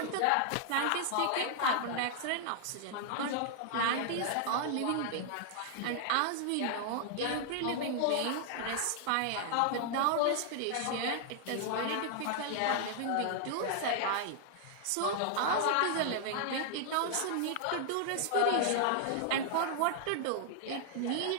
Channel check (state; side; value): different; both; correlation 0.00